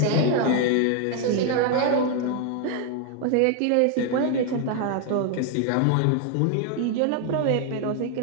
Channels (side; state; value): both; different; correlation 0.01